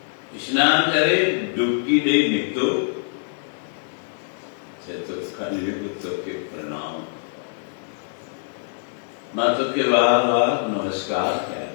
स्नान करे, डुबकी दे निकलो तो कलयुग तो के प्रणाम माता के बार बार नमस्कार किया,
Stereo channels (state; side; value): silent; right; digital silence